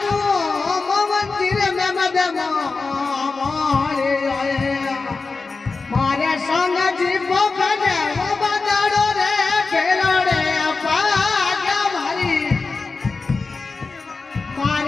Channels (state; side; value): quieter; right; 4.1 dB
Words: मंदिर में मदमो मारे संग जीवो बने वो बदाड़ो रे खेलो रे पागा मारी